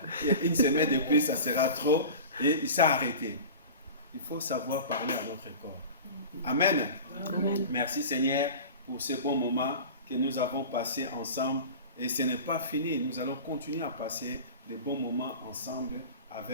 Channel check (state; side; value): inverted; both; correlation -0.35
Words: une semaine de plus, ça sera trop. Et il s'est arrêté. Il faut savoir parler à notre corps. Amen. Amen. Merci Seigneur pour ce bon moment que nous avons passé ensemble. Et ce n'est pas fini. Nous allons continuer à passer de bons moments ensemble